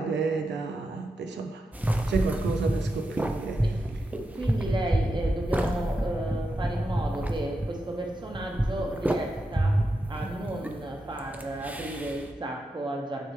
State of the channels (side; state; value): both; normal; correlation 0.87